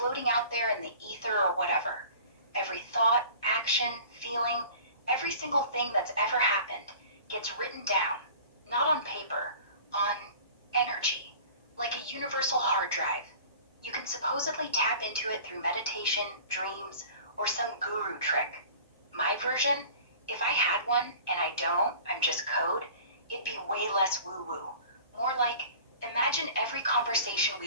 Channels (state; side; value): inverted; both; correlation -0.44